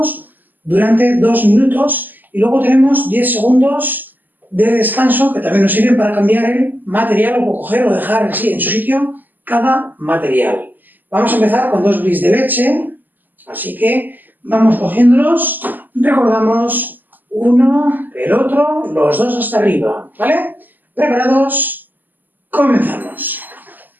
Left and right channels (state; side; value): late; left; 0.086 ms